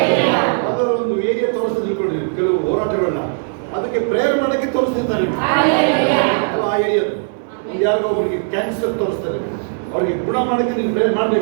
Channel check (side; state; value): left; silent; digital silence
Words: ಅದರ ಒಂದು ಏರಿಯಾ ತೋರಿಸ್ತಾ ತಿಳ್ಕೊಂಡ್ರಿ ಕೆಲವು ಹೋರಾಟಗಳನ್ನ, ಅದಕ್ಕೆ ಪ್ರೇಯರ್ ಮಾಡಕ್ಕೆ ತೋರಿಸ್ತಿರ್ತಾರೆ ಆ ಏರಿಯಾದ. ಒಂದು ಯಾರಿಗೋ ಒಬ್ಬರಿಗೆ ಕ್ಯಾನ್ಸರ್ ತೋರಿಸ್ತಾರೆ, ಅವ್ರಿಗೆ ಗುಣ ಮಾಡಕ್ಕೆ ನೀನು ಪ್ರೇಯರ್